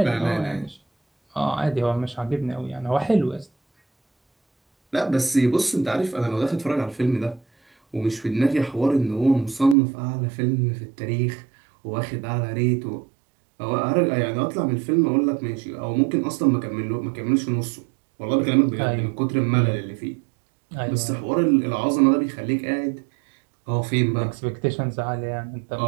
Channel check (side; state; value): left; drops out; at 9.8 s